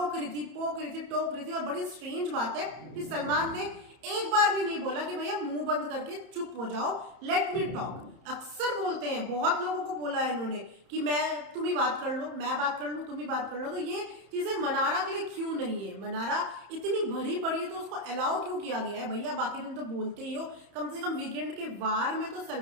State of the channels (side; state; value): left; late; 30 ms